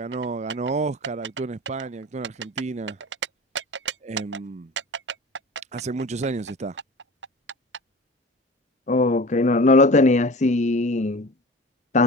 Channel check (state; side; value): normal; both; correlation 0.37